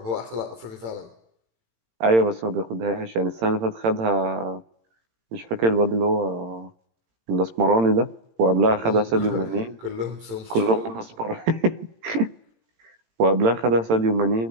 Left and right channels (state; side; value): late; left; 18 ms